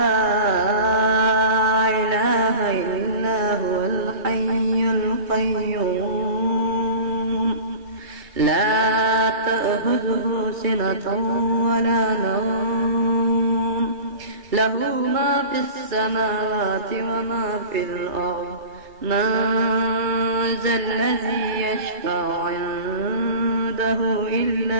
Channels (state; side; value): late; left; 2.3 ms